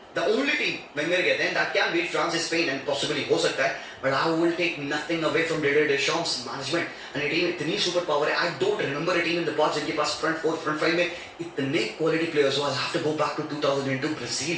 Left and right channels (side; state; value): both; identical; correlation 1.00